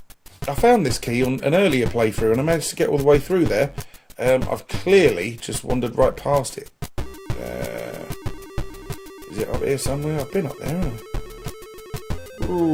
I found this key on an earlier playthrough and I managed to get all the way through there. I've clearly just wandered right past it. Is it up here somewhere? I've been up there, haven't I?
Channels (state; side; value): identical; both; correlation 1.00